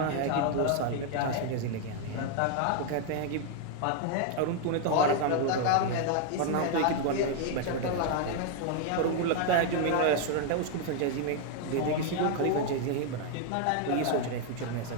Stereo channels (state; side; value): different; both; correlation 0.00